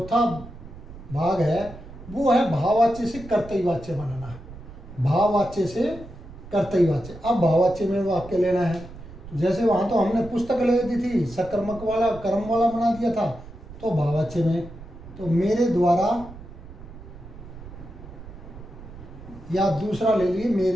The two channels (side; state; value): right; noise; rumble, 16 dB below the sound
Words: भाग है वो है भाववाच्य से कर्तई वाच्य बनाना। भाववाच्य से कर्तई वाच्य। अब भाववाच्य में वाक्य लेना है, तो जैसे वहाँ तो हमने पुस्तक ले दी थी, सकर्मक वाला कर्म वाला बना दिया था, तो भाववाच्य में तो मेरे द्वारा, या दूसरा ले लिए,